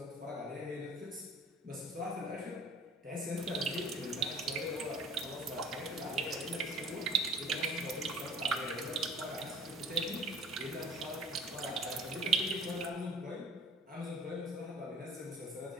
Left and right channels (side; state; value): both; normal; correlation 0.49